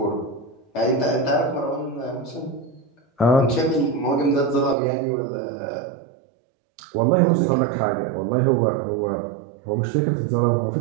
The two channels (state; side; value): drops out; left; at 4.8 s